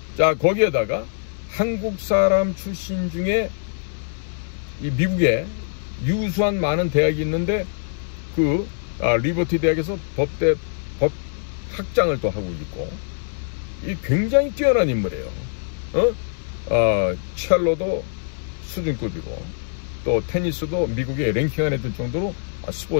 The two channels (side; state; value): right; silent; 60 dB below the other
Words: 자, 거기에다가 한국 사람 출신 중에 이 미국에 유수한 많은 대학이 있는데 그 리버티 대학에서 법 학장을 또 하고 있고, 이 굉장히 뛰어난 인물이에요. 첼로도 수준급이고 또 테니스도 미국에 랭킹 안에 들 정도로